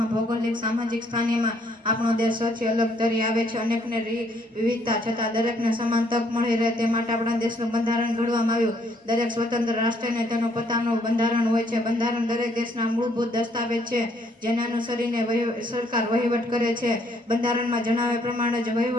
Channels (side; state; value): both; normal; correlation 0.67